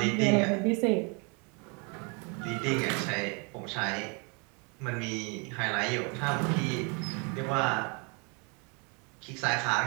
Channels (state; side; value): quieter; left; 33.4 dB